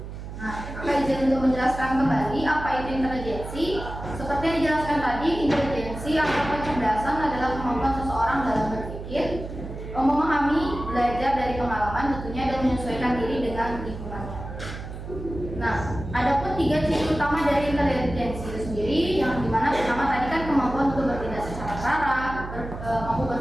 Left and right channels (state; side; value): noise; right; hum, 10 dB below the sound